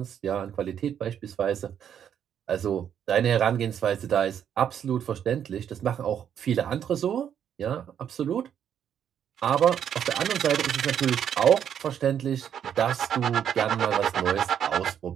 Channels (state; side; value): quieter; left; 9.0 dB